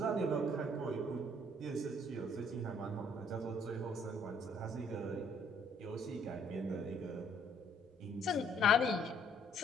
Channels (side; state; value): both; normal; correlation 0.63